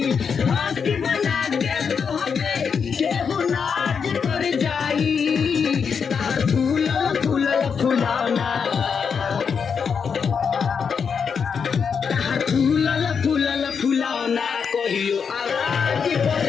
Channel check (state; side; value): quieter; right; 6.3 dB